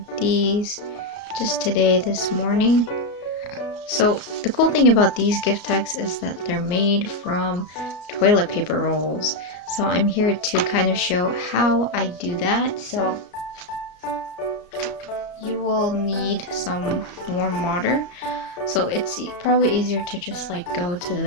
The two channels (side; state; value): right; late; 34 ms